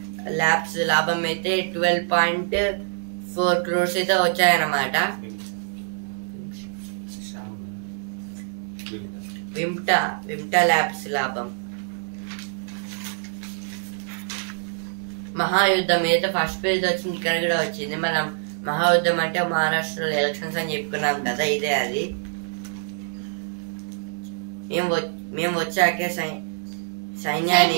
ల్యాబ్స్ లాభం అయితే 12.4 crores అయితే వచ్చాయన్నమాట. విమ్టా ల్యాబ్స్ లాభం. మహాయుద్ధం ఏదైతే ఫస్ట్ పేజ్ వచ్చింది, ఇక్కడ కూడా వచ్చింది. మనం మహాయుద్ధం అంటే మహారాష్ట్రలో ఎలక్షన్స్ అని చెప్పుకున్నాం కదా, ఇదే అది. మేము వచ్చాకే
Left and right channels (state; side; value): silent; left; digital silence